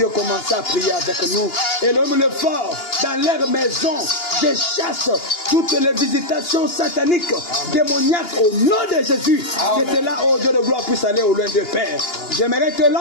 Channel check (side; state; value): right; late; 2.8 ms